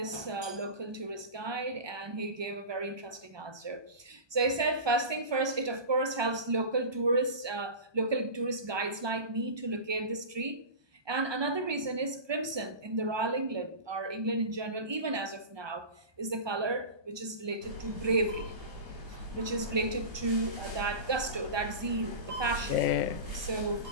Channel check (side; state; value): left; late; 1.2 ms